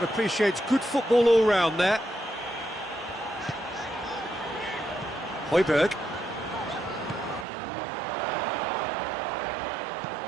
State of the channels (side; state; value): left; drops out; at 7.5 s